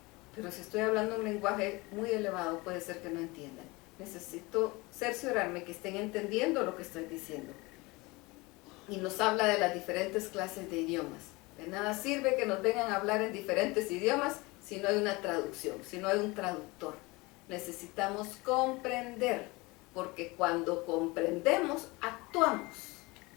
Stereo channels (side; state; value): right; quieter; 23.9 dB